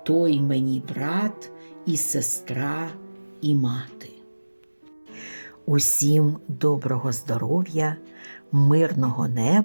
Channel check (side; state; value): both; inverted; correlation -1.00